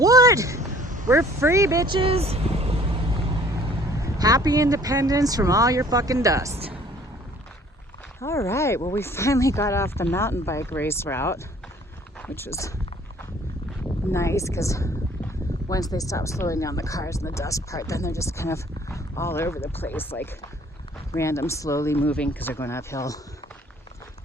We're free, bitches. Happy independence from all your fucking dust. All right, well, we finally got off the mountain bike race route, which was nice, because once they stop slowing down the cars and the dust part, then they're just kind of all over the place, like random slowly moving, because they're going uphill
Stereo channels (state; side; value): normal; both; correlation 0.55